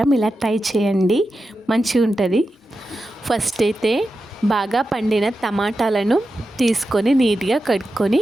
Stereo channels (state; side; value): normal; both; correlation 0.91